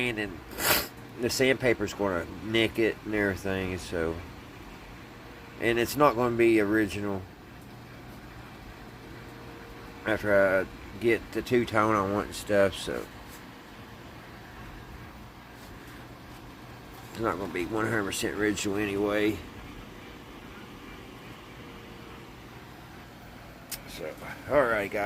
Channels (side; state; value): both; identical; correlation 1.00